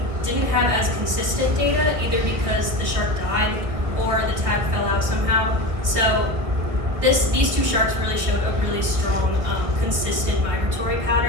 didn't have as consistent data, either because the shark died or the tag fell out somehow. So these 2 sharks really showed a really strong, consistent migratory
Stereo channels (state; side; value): late; left; 1.3 ms